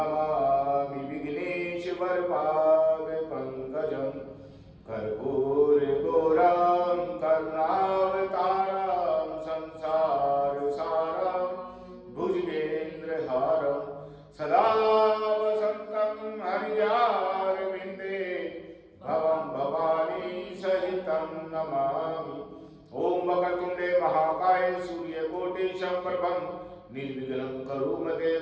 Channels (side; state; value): both; identical; correlation 1.00